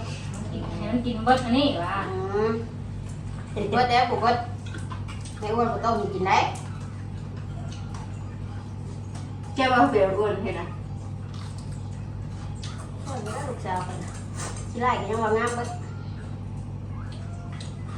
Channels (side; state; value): both; identical; correlation 1.00